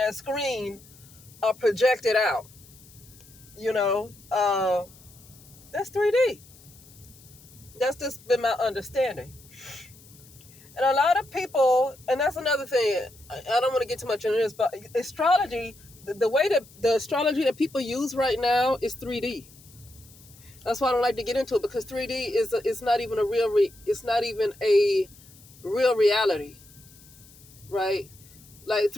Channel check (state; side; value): noise; left; hiss, 24 dB below the sound